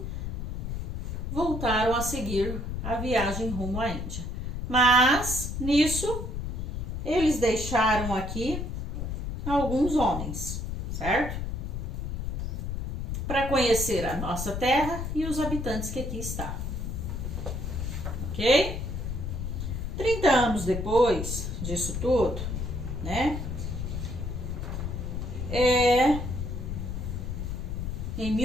voltaram a seguir a viagem rumo à Índia. Mas, nisso, eles deixaram aqui alguns homens, certo? Para conhecer a nossa terra e os habitantes que aqui estavam. Ok? 30 anos depois disso tudo, né? Em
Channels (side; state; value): left; noise; rumble, 4 dB below the sound